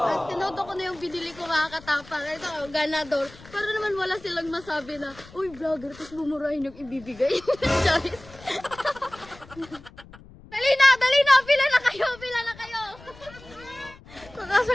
tinodo ko na yung binili ko mga katapang. Ito, ganador. Pero naman wala silang masabi na, uy vlogger, tapos bumurahin yung ibibigay. Charis. Dali na, pila na kayo.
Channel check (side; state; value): left; noise; rumble, 21 dB below the sound